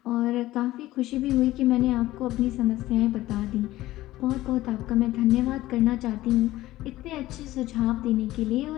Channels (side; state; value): right; quieter; 16.3 dB